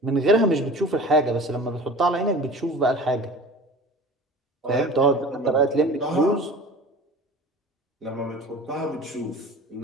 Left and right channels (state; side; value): normal; both; correlation 0.39